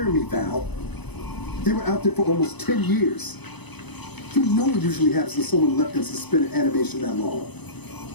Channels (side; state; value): right; late; 0.99 ms